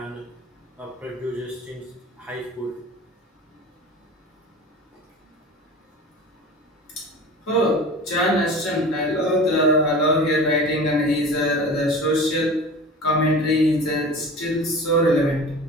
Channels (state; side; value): normal; both; correlation 0.37